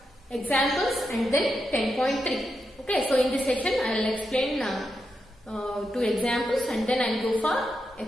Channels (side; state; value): both; normal; correlation 0.85